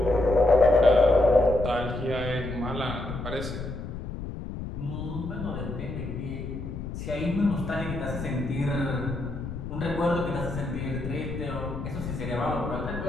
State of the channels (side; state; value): left; noise; rumble, 7 dB below the sound